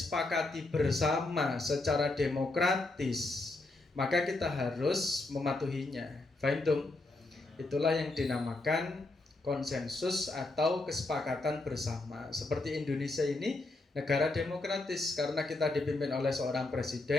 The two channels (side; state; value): right; quieter; 3.0 dB